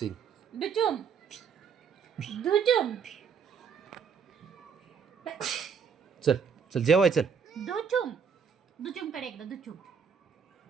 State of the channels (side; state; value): left; quieter; 6.5 dB